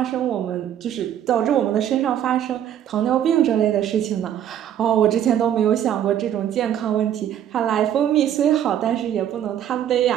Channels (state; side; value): quieter; left; 10.3 dB